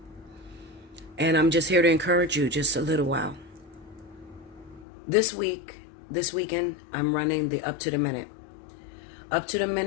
And I'm just here to encourage you just a little while. This weekend, I'm running the Up to the Minute. Up to the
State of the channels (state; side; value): drops out; right; at 4.9 s